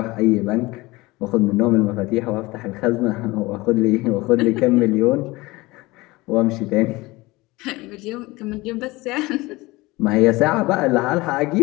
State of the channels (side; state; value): right; quieter; 21.3 dB